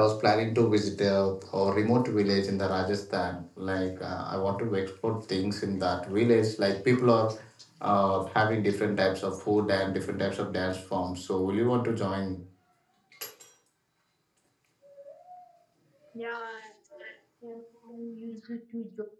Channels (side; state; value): both; identical; correlation 1.00